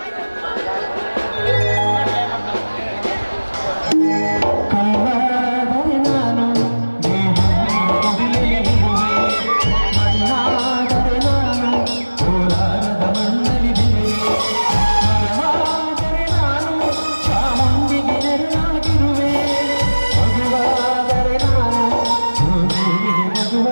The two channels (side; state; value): both; inverted; correlation -1.00